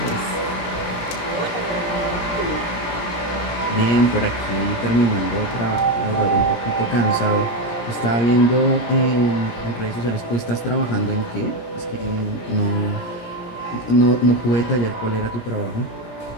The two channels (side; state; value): right; late; 17 ms